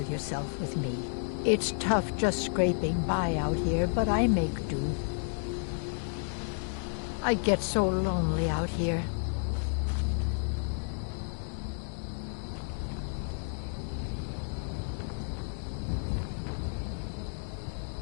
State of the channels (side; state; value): right; silent; digital silence